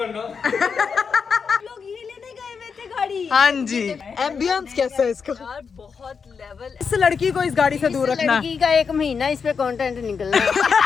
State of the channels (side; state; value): right; quieter; 5.8 dB